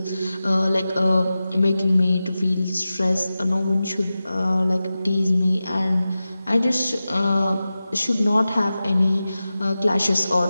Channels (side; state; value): both; inverted; correlation -0.94